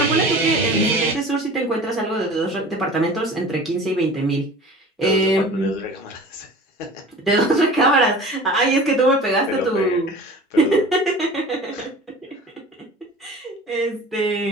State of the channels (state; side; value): normal; both; correlation 0.41